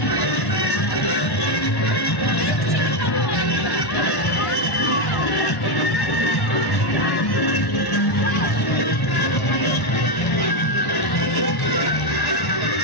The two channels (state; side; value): late; right; 1.0 ms